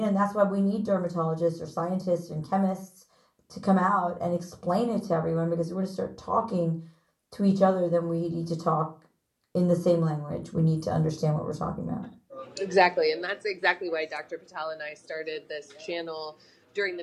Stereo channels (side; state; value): both; identical; correlation 1.00